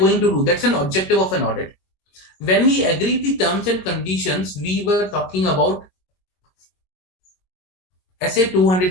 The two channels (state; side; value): late; right; 22 ms